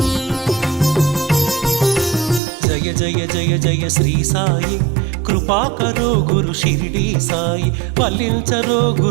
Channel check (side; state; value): left; drops out; at 2.4 s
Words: జయ జయ జయ జయ శ్రీ సాయి, కృపా కరో గురు షిరిడి సాయి. వల్లించరో